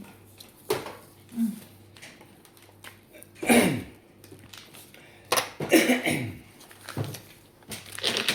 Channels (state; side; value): identical; both; correlation 1.00